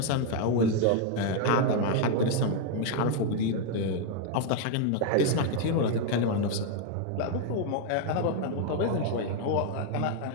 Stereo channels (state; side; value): different; both; correlation 0.00